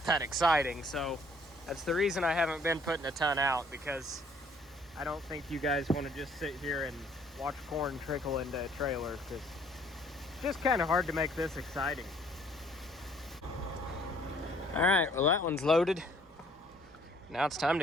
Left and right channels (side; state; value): both; normal; correlation 0.60